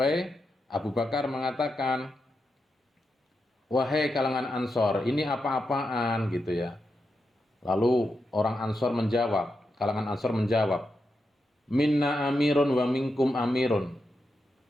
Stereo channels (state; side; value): normal; both; correlation 0.87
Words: Abu Bakar mengatakan, "Wahai kalangan Ansor, ini apa-apaan?" gitu ya. Lalu orang Ansor menjawab, kalangan Ansor menjawab, "Minna amirun wa minkum amirun."